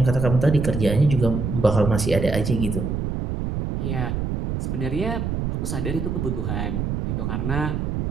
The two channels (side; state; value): right; noise; rumble, 1 dB below the sound